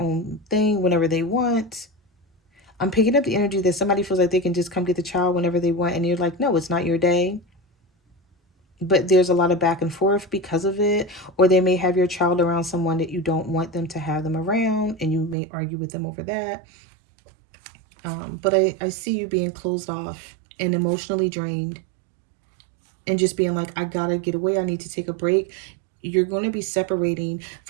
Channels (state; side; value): drops out; left; at 15.4 s